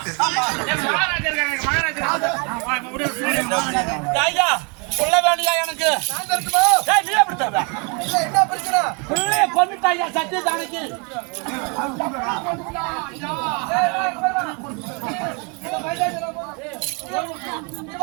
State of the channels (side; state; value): left; quieter; 33.7 dB